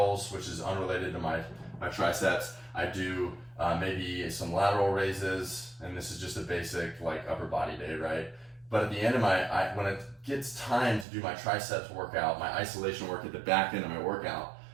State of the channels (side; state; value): left; drops out; at 11.1 s